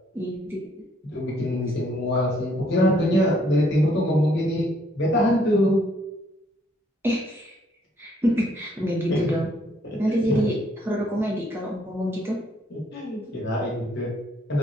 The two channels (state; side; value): normal; both; correlation 0.67